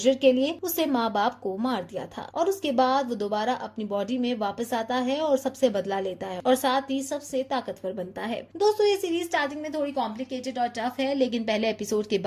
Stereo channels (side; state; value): both; identical; correlation 1.00